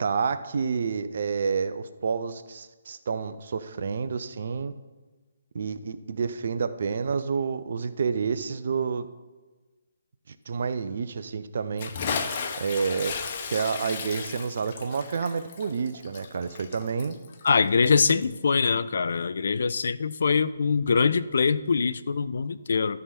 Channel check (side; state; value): both; inverted; correlation -0.80